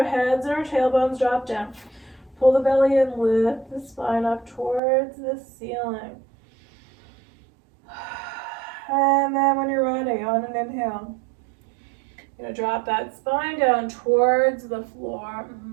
heads and our tailbones drop down. Pull the belly in, lift the spine up towards the ceiling. And then when you're ready, on an inhale, you're going to drop that spine down towards the floor.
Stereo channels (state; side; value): drops out; left; at 4.8 s